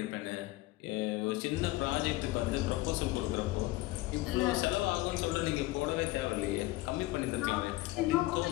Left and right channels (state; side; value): quieter; right; 19.1 dB